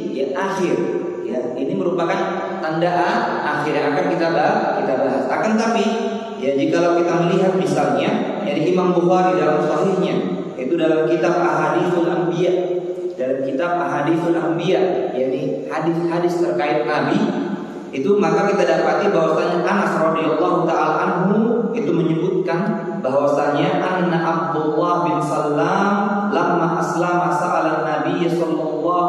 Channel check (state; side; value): identical; both; correlation 1.00